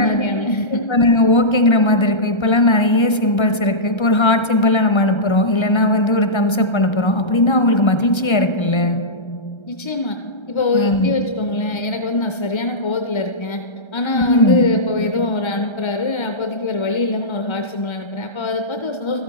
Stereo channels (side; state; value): right; late; 1.3 ms